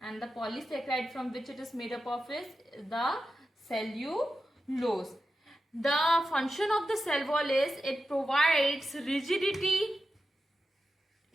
the polysaccharide from which it is made up of is the cellulose. The function of the cell wall is it provides rigidity.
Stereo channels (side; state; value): both; normal; correlation 0.90